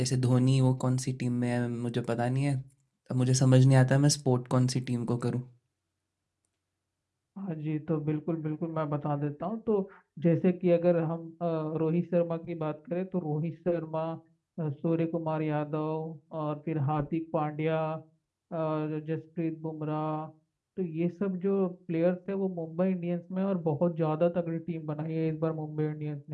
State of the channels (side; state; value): both; identical; correlation 1.00